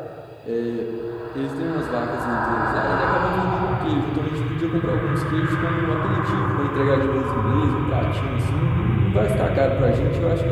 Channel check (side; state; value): both; identical; correlation 1.00